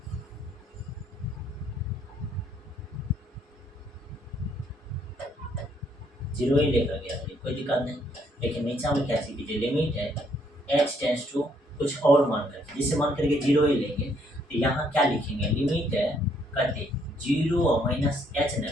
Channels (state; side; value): normal; both; correlation 0.69